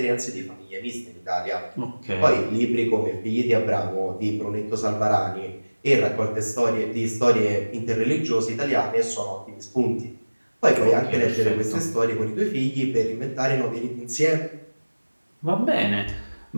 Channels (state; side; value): inverted; both; correlation -1.00